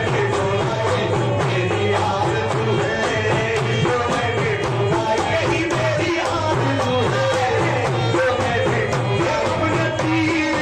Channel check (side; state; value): both; identical; correlation 1.00